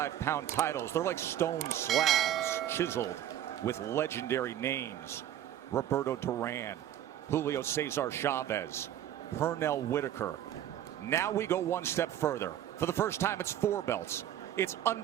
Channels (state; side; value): quieter; left; 11.4 dB